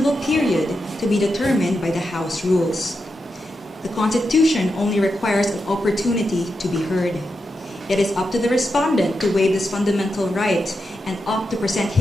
period to be determined by the House rules. The Constitution only requires an opportunity to be heard. It is up to the respondent to waive this fundamental right and opt to present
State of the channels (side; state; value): both; normal; correlation 0.87